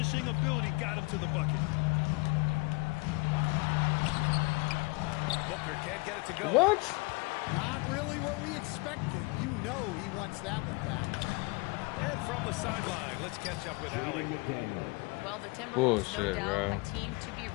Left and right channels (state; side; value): quieter; right; 27.9 dB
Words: ability got him to the bucket. Booker can't get it to go. What? Not really what we expected. You know he wants that one back. And from the sideline, let's catch up with Allie. Well, the Timberwolves, Bullshit, no doubt, bro. a team to be